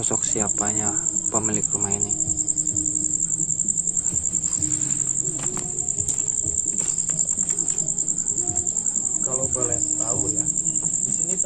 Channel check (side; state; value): right; noise; rumble, 24 dB below the sound